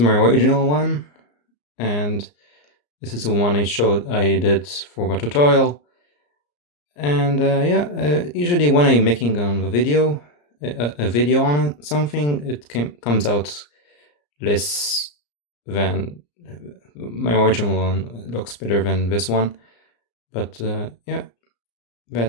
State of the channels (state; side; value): late; right; 34 ms